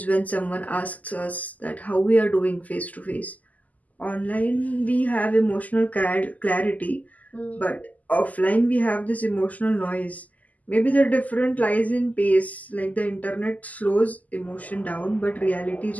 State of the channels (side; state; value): right; late; 0.077 ms